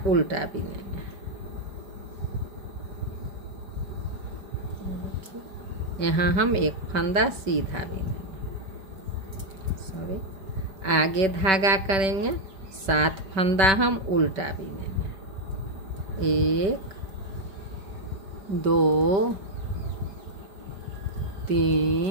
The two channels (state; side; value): late; left; 5.2 ms